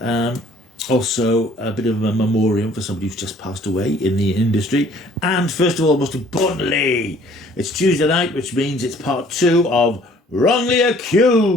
also a bit of a memoriam for somebody who's just passed away in the industry. And first of all, most importantly, it's Tuesday night, which means it's part 2 of Wrongly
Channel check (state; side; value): normal; both; correlation 0.56